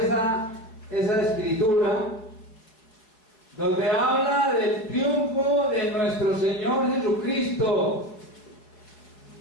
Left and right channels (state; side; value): late; right; 4.6 ms